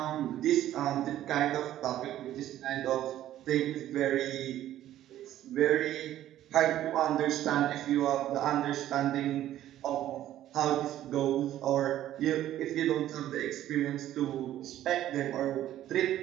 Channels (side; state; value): left; quieter; 12.8 dB